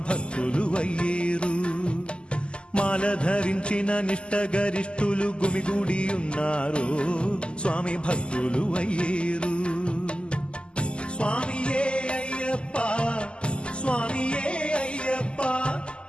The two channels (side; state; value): right; late; 0.050 ms